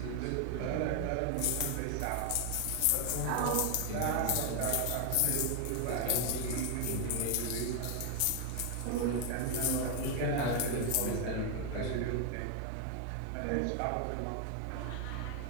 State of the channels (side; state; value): both; different; correlation 0.01